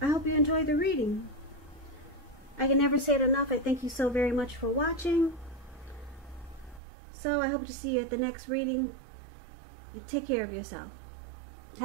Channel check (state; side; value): drops out; left; at 6.8 s